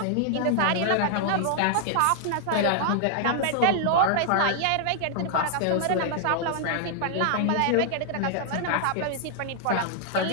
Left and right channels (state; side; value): different; both; correlation 0.00